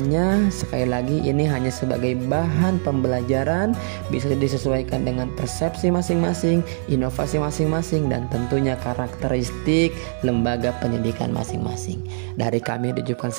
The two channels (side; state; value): left; silent; 64 dB below the other